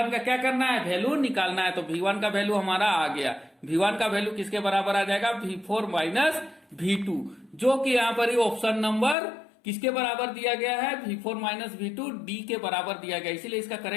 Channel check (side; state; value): right; drops out; at 9.2 s